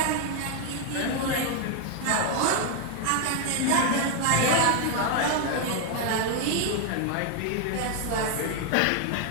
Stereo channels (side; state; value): both; different; correlation 0.01